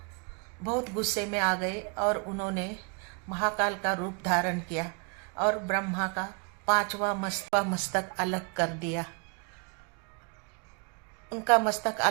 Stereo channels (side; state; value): left; quieter; 36.5 dB